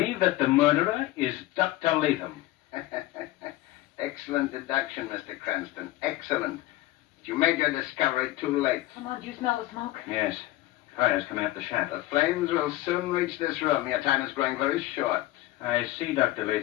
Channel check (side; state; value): right; quieter; 17.0 dB